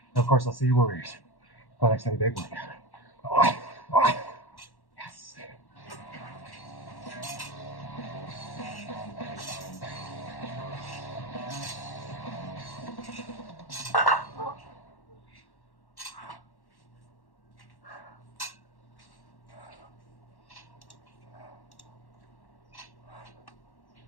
And of course, I'll see you Warriors for the next heavy bag workout. Yes.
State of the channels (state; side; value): late; right; 1.1 ms